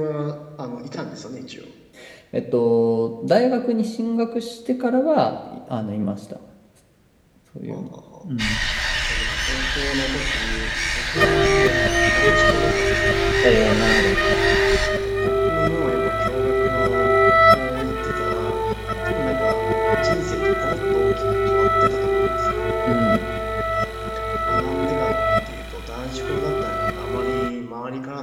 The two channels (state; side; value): identical; both; correlation 1.00